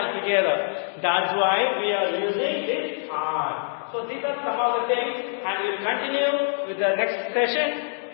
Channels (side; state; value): right; silent; digital silence